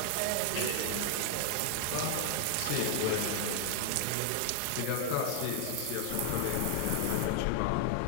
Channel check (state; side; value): different; both; correlation 0.00